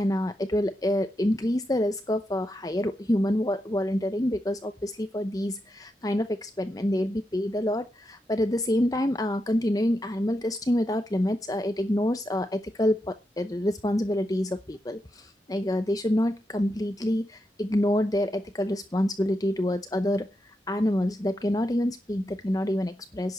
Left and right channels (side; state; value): both; normal; correlation 0.85